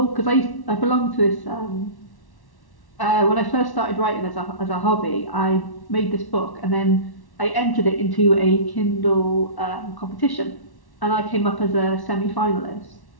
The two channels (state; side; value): late; right; 1.1 ms